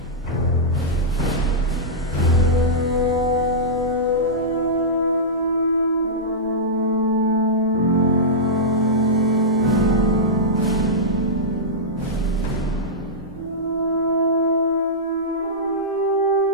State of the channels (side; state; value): both; normal; correlation -0.12